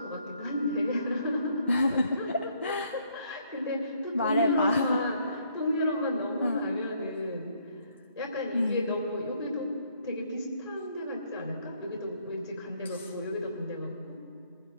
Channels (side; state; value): both; inverted; correlation -0.68